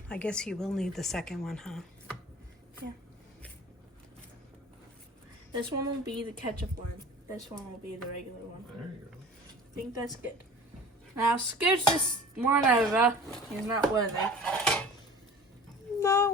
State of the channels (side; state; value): both; normal; correlation 0.42